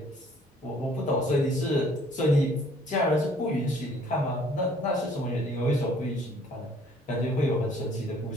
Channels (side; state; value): both; normal; correlation 0.58